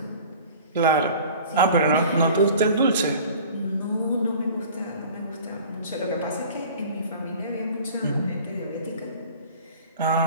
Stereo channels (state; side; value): inverted; both; correlation -0.44